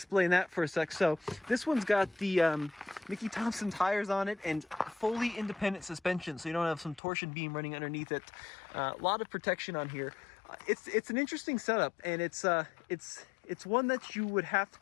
that for a sec. So this one's got the Mickey Thompson tires on it and fully independent suspension, so you don't have some torsion beam running underneath it. A lot of protection on here. It's an interesting setup, and it's one that you would have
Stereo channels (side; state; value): right; drops out; at 7.0 s